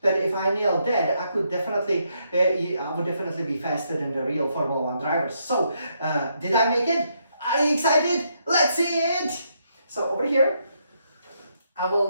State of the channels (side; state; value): both; inverted; correlation -0.77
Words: that if I nailed that, I would definitely be faster than the real Formula 1 drivers. So did I make it? Are you excited? Let's see it. So over here, I will